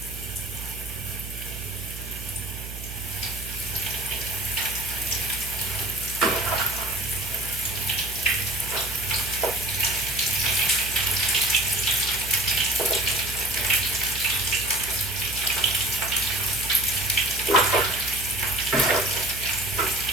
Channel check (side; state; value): right; noise; hum, 10 dB below the sound